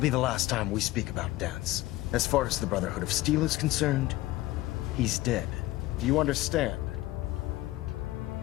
the last time we speak about Dance. As far as the Brotherhood of Steel is concerned, he's dead. Do you understand?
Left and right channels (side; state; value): right; quieter; 17.4 dB